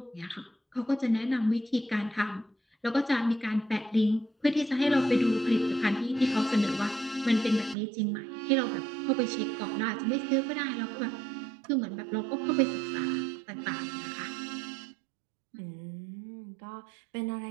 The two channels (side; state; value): left; drops out; at 7.8 s